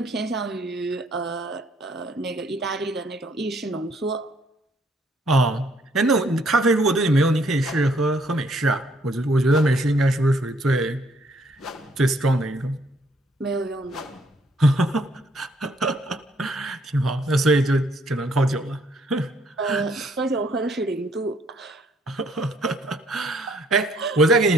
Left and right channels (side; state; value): both; normal; correlation 0.66